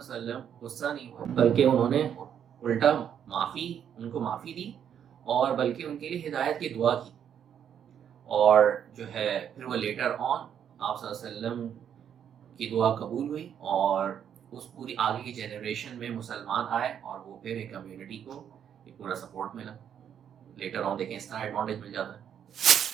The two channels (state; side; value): quieter; left; 8.8 dB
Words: علیہ وسلم غصہ نہیں ہوا, بلکہ انہوں نے الٹا ان کو معافی دی, اور بلکہ ان کے لیے ہدایت کی دعا کی. اور جو ہے پھر وہ لیٹر آن آپ صلی اللہ علیہ وسلم کی دعا قبول ہوئی, اور اس پوری آگے کی جنریشن میں مسلمان آئے, اور وہ پھر ایک کمیونٹی کو ایک پورا سپورٹ ملا. لیٹر آن دیکھیں اس طرح ایڈوانٹیج مل جاتا ہے.